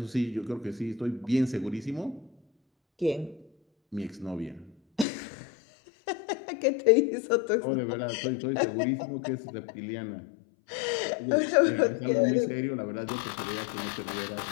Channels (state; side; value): drops out; right; at 5.1 s